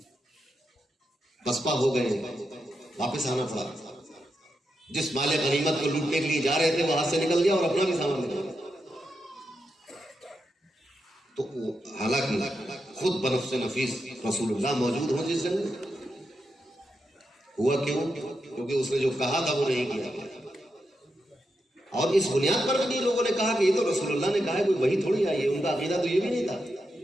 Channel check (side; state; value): both; normal; correlation 0.86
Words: پسپا ہو گئے، واپس آنا پڑا۔ جس مال غنیمت کو لوٹنے کے لیے جا رہے تھے وہ ہاتھ سے نکل گیا اور اپنا بھی سامان نکل گیا۔ تو حالانکہ خود بنفس نفیس رسول اللہ موجود ہوں جس جنگ میں، ہوا کیوں؟ کیونکہ اس نے جو کہا تھا وہ نہیں کیا گیا۔ اور اس بنیاد پر بھی لوگوں نے کہا کہ یہ تو رسول اللہ نے کہا ہے، کوئی وہی تھوڑی آئی ہے، ان کا عقیدہ تو یہ بھی نہیں تھا۔